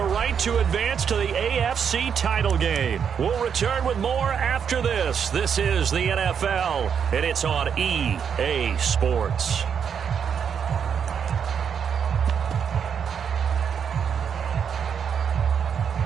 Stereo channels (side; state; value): left; quieter; 7.4 dB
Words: right to advance to the AFC title game. We'll return with more after this. This is the NFL, and it's on EA Sports.